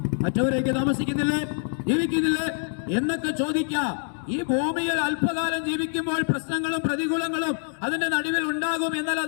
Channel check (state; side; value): silent; right; 57 dB below the other